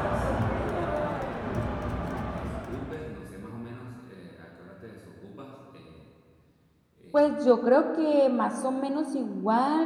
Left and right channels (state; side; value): identical; both; correlation 1.00